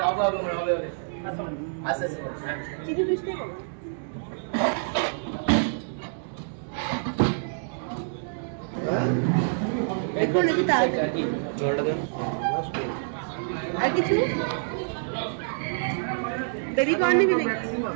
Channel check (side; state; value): left; silent; digital silence